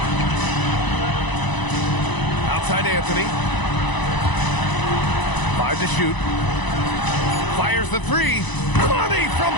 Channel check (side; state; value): right; late; 1.0 ms